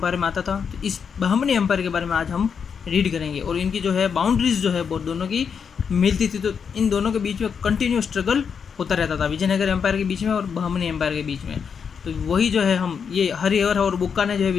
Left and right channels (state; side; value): quieter; right; 6.6 dB